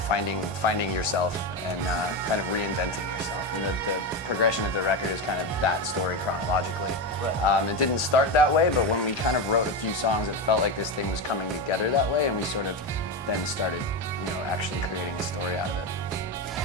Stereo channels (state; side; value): normal; both; correlation 0.15